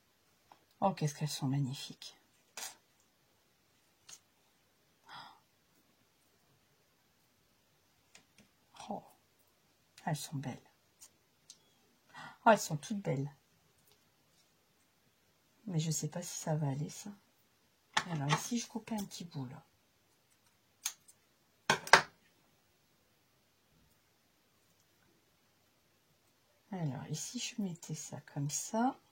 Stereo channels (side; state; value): both; identical; correlation 1.00